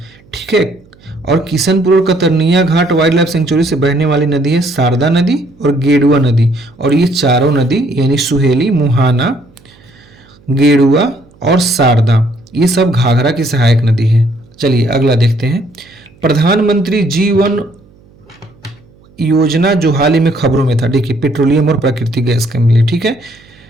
ठीक है, और किशनपुर और कतरनिया घाट वाइल्ड लाइफ सेंचुरी से बहने वाली नदी है शारदा नदी और गेडुआ नदी। और ये चारों नदी यानी सुहेली, मुहाना, गेडुआ और शारदा, ये सब घाघरा की सहायक नदी है। चलिए अगला देखते हैं। प्रधानमंत्री जीवन योजना जो हाल ही में खबरों में था, देखिए पेट्रोलियम और प्राकृतिक गैस के लिए, ठीक है,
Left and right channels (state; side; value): noise; right; hum, 29 dB below the sound